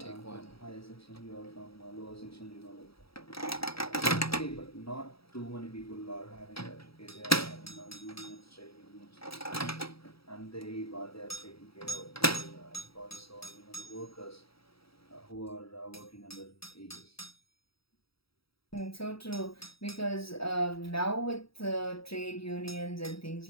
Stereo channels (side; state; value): right; late; 0.76 ms